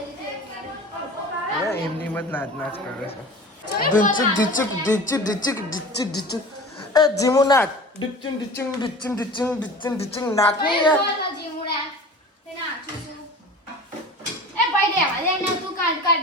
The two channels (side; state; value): both; normal; correlation 0.38